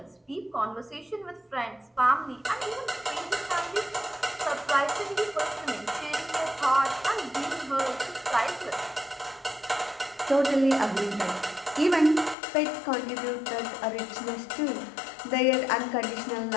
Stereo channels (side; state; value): right; drops out; at 12.4 s